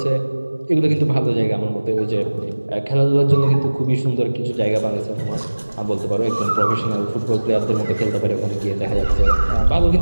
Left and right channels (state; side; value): inverted; both; correlation -1.00